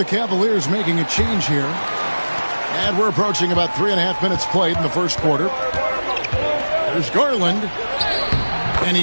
Cavaliers making a change here. And we're approaching about 3.5 minutes played in the first quarter. There's Garland, and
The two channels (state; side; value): inverted; both; correlation -1.00